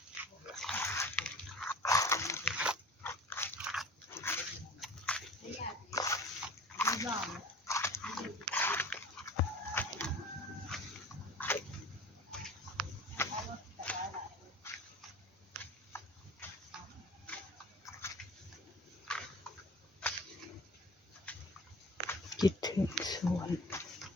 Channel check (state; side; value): normal; both; correlation 0.41